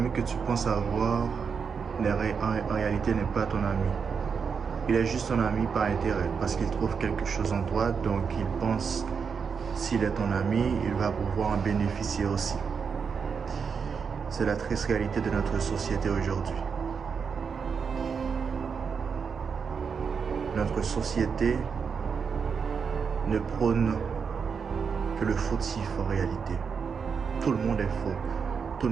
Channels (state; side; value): quieter; left; 6.0 dB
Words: que tu penses avoir, en réalité, n'est pas ton ami. Il est juste ton ami par intérêt, parce qu'il trouve quelque chose en toi, donc il pense, s'il est ton ami, il va pouvoir en bénéficier aussi. C'est la triste réalité de notre société aujourd'hui. Notre société ne prône que le fautif en réalité. Tout le monde est faux. Tout